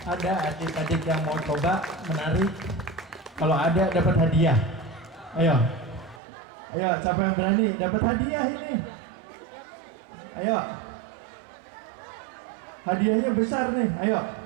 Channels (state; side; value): drops out; left; at 6.2 s